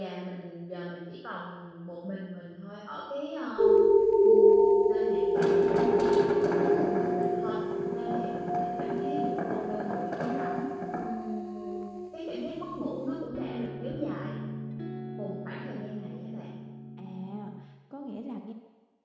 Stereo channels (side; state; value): both; identical; correlation 1.00